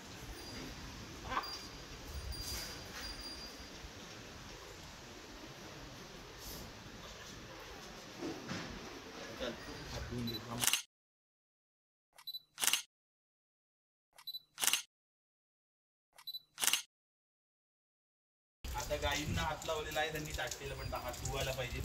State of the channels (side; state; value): both; identical; correlation 1.00